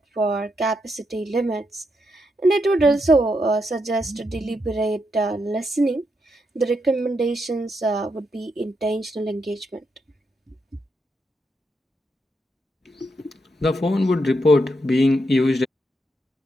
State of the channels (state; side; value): normal; both; correlation 0.81